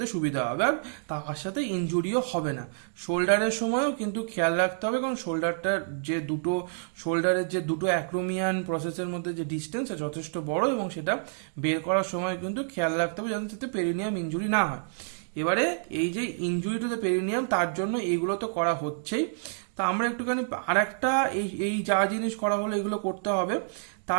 সুবিধা হবে, আর তার সাথে ইনজুরিও হবে না। শোল্ডারের সময়ও কিন্তু খেয়াল রাখতে হবে, কারণ শোল্ডারের যে দুটো অ্যাক্রোমিয়ান প্রসেসের মধ্যে যে ডিস্টেন্স যথেষ্ট বড়, এবং সেটা বের করার সময় কিন্তু খেয়াল রাখতে হবে যাতে তাতে পেরিনিয়াম ইনজুরি না হয়। এবারে এই যে ইনজুরি টু দ্য পেরিনিয়াম, তার জন্য এইগুলো তো করা হচ্ছেই। তা আমরা একটুখানি আর একটা এই যা জিনিস করা হলো এগুলো করতে হবে,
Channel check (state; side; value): silent; left; digital silence